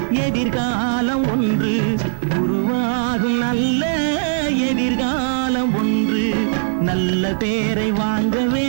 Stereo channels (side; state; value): left; silent; 66 dB below the other